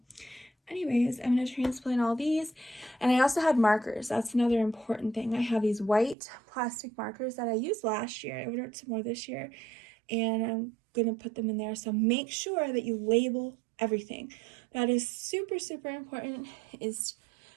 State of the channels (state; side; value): drops out; left; at 6.2 s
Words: anyways, I'm going to transplant all these. And I also had markers. That's another important thing. I have these white plastic markers that I used last year. I ordered some more this year and I'm going to put them in there. So make sure that you label everything. That is super, super important, is